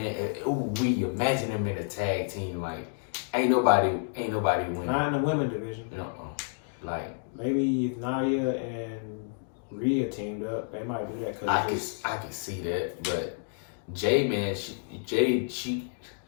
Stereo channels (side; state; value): right; silent; digital silence